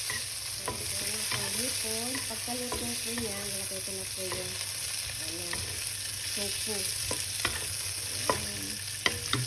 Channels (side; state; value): both; identical; correlation 1.00